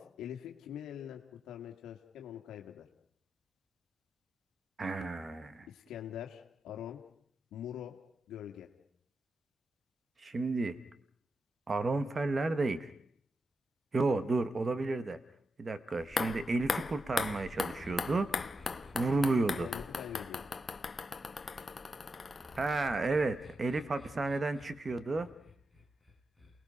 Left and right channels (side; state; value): both; normal; correlation 0.88